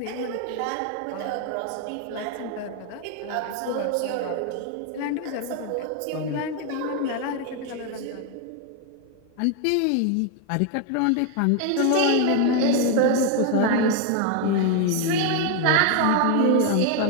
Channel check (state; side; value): different; both; correlation 0.01